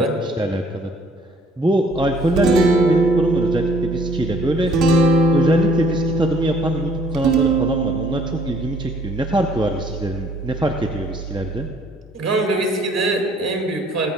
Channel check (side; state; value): both; normal; correlation 0.58